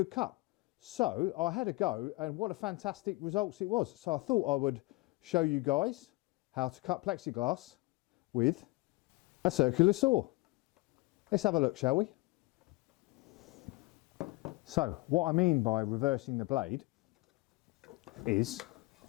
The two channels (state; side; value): quieter; right; 23.0 dB